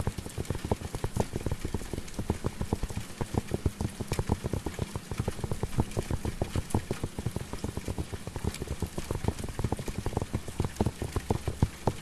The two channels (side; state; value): both; identical; correlation 1.00